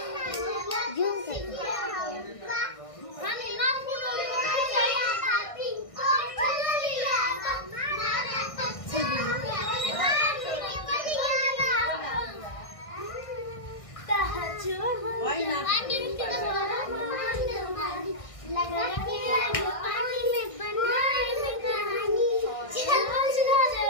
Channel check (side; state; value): right; late; 1.6 ms